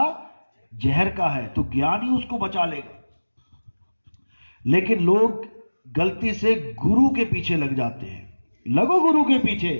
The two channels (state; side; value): inverted; both; correlation -1.00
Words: जहर का है, तो ज्ञान ही उसको बचा लेगा। लेकिन लोग गलती से गुरु के पीछे लग जाते हैं। लगो गुरु के पीछे,